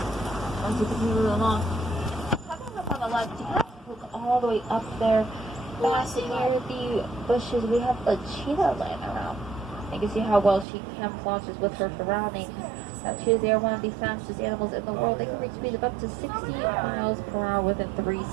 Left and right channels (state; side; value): drops out; left; at 10.7 s